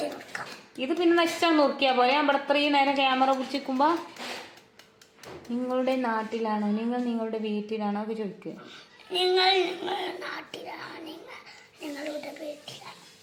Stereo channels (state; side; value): identical; both; correlation 1.00